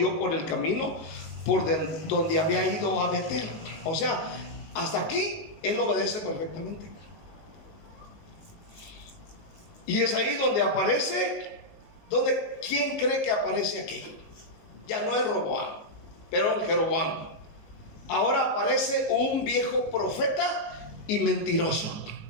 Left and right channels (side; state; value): right; late; 19 ms